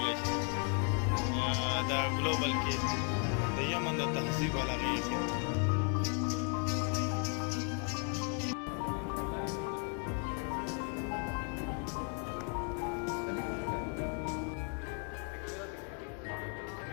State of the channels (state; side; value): quieter; right; 39.3 dB